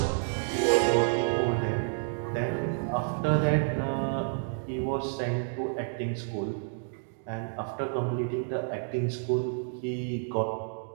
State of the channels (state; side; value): silent; left; digital silence